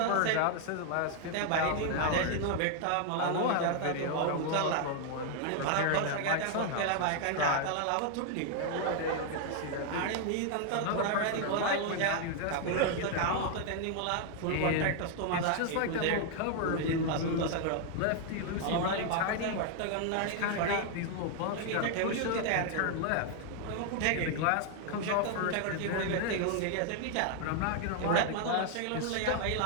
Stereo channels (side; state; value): both; different; correlation 0.00